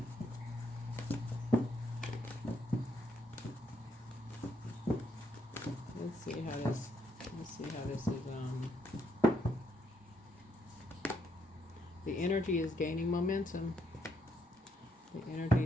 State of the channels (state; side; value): normal; both; correlation 0.74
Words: Let's see how this is. The energy is gaining momentum. The energy